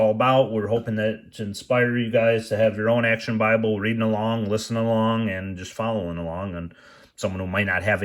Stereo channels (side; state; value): both; identical; correlation 1.00